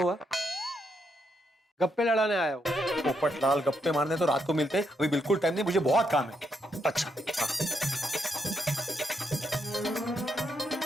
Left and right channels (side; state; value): both; normal; correlation 0.79